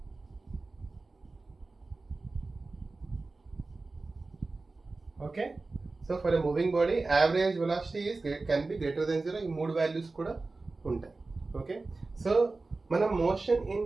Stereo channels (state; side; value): quieter; left; 3.6 dB